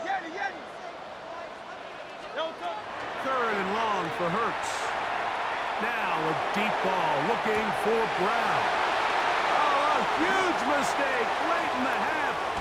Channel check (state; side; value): identical; both; correlation 1.00